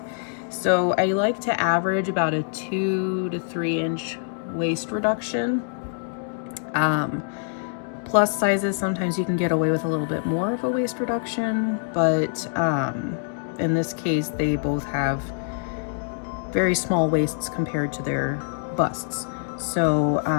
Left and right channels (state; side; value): silent; right; digital silence